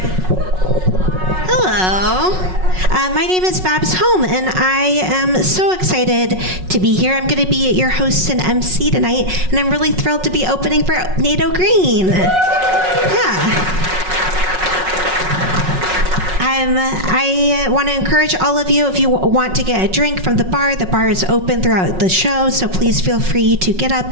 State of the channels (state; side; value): late; left; 5.4 ms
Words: Hello. My name is Babs Holm, and I am so excited to be here. I'm going to be your host and MC tonight, and I'm really thrilled to be opening for NATO Green. Yeah. I want to encourage all of you, if you want to get a drink from the bar is open throughout the show, so please feel free to get up